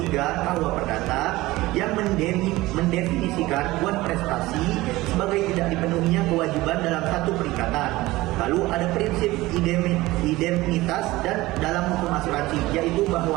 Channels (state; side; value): quieter; left; 18.9 dB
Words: KUH Perdata yang mendefinisikan wan prestasi sebagai tidak dipenuhinya kewajiban dalam satu perikatan. Lalu ada prinsip indemnitas dan dalam hukum asuransi, yaitu